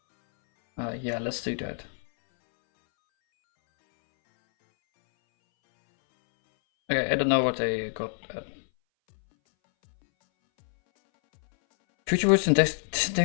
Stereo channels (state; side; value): silent; right; 61 dB below the other